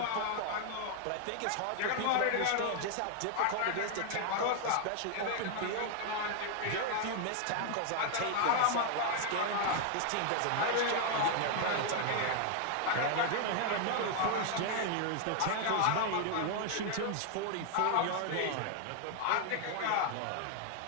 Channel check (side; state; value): both; different; correlation 0.00